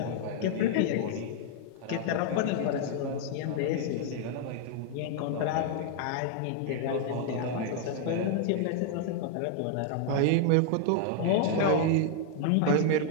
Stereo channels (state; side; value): different; both; correlation 0.00